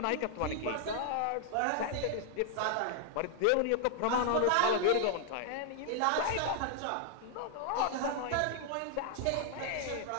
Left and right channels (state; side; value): different; both; correlation 0.00